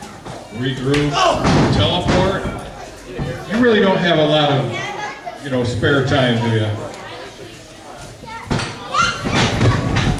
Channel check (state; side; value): identical; both; correlation 1.00